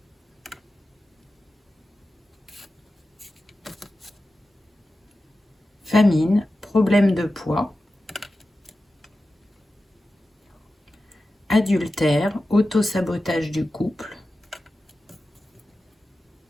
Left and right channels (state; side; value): normal; both; correlation 0.93